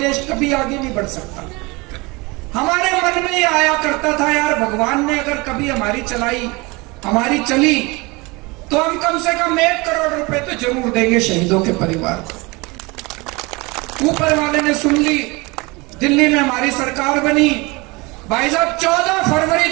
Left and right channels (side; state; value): left; quieter; 25.3 dB